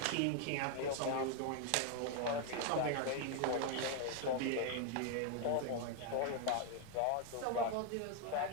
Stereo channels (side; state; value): both; different; correlation 0.01